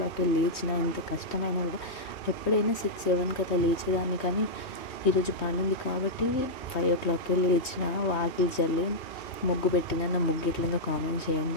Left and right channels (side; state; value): right; late; 3.2 ms